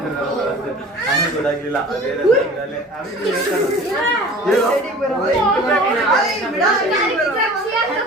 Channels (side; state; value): both; normal; correlation 0.43